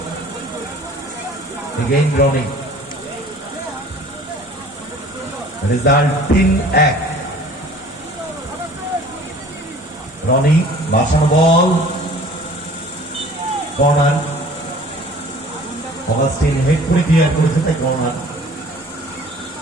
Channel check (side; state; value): both; normal; correlation 0.49